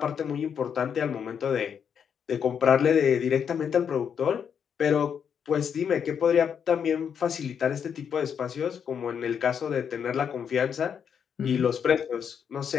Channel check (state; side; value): quieter; right; 7.6 dB